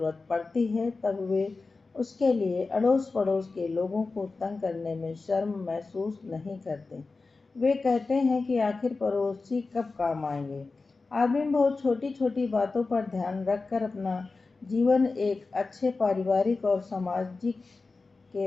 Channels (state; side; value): quieter; right; 3.9 dB